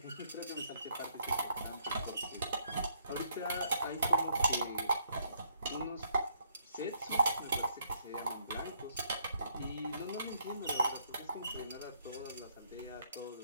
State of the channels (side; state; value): both; inverted; correlation -0.69